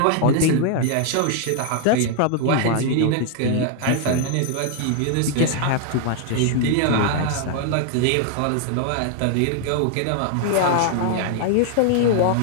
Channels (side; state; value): both; different; correlation 0.00